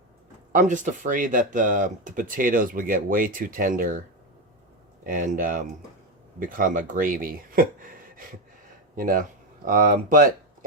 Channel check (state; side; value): normal; both; correlation 0.12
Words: I'm just afraid that the potatoes would get way too tender and become a gravy. You know. But